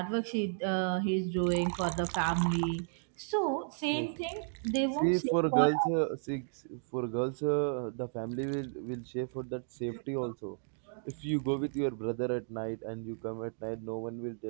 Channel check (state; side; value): silent; left; digital silence